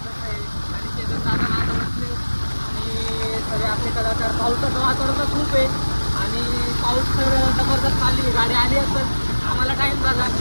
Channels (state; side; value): inverted; both; correlation -1.00